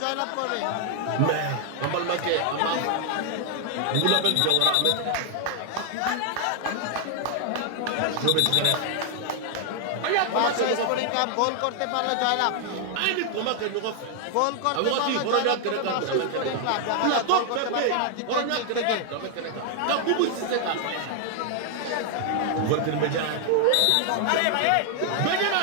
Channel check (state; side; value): different; both; correlation 0.00